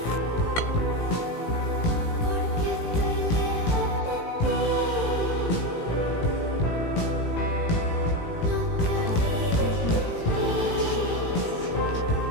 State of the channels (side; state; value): right; late; 18 ms